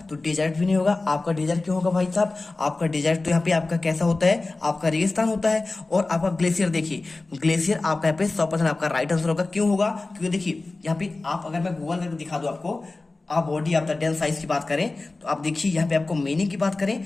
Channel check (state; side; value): quieter; right; 3.3 dB